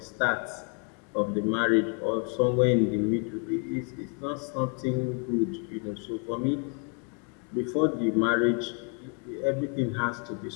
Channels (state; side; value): quieter; right; 36.0 dB